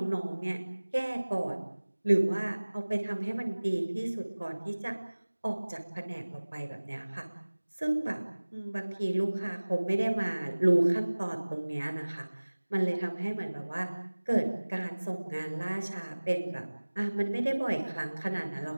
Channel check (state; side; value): inverted; both; correlation -1.00